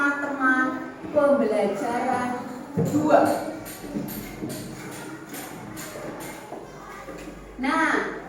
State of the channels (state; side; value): identical; both; correlation 1.00